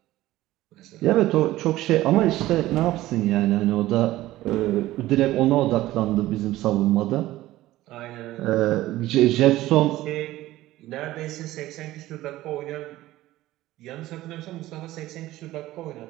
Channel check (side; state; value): left; quieter; 16.1 dB